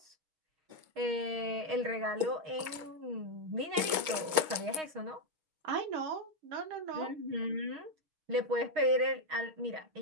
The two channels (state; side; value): late; left; 6.5 ms